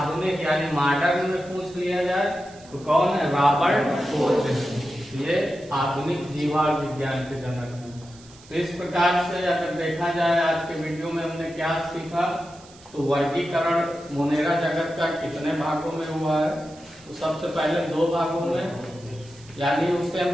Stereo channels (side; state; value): right; noise; hiss, 23 dB below the sound